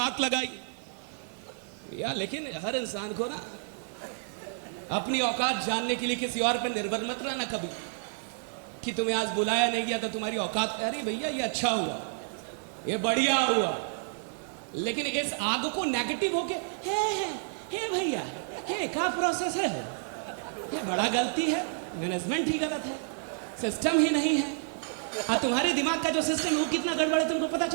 लगाई भैया, लेकिन हर इंसान को ना अपनी औकात जानने के लिए किसी और पर निर्भर मत रहना कभी, कि तुम्हें आज बुलाया नहीं गया तो तुम्हारी औकात। अरे भैया ये अच्छा हुआ, ये बढ़िया हुआ, लेकिन इस आग को नेगेटिव होके हे भैया हे का प्रोसेस है, ये बड़ा गलती है, मैनेजमेंट ही गलत है, सिस्टम ही नहीं है। और तुम्हारे दिमाग का जो सिस्टम है वो कितना गड़बड़ है तुमको पता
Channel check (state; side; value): silent; left; 58 dB below the other